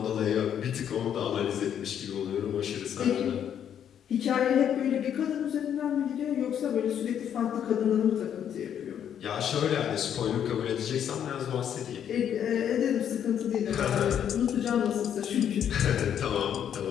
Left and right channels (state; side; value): quieter; right; 9.2 dB